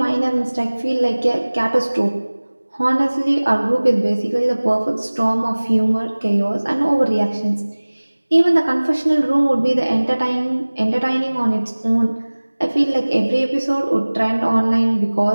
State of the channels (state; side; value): inverted; both; correlation -1.00